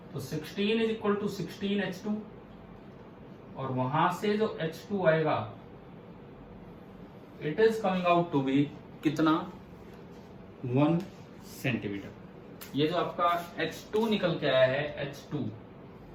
तो 16 इज इक्वल टू 16 h2, और वहां से जो h2 आएगा it is coming out to be कितना? 1 सेंटीमीटर। ये जो आपका h2 निकल के आया है,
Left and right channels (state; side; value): identical; both; correlation 1.00